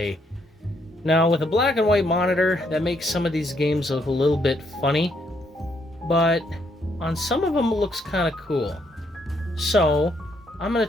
Now, with a black and white monitor, that makes some of these games look a little bit funny, but on some of them it looks kind of cool. So, I'm going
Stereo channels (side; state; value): both; normal; correlation 0.73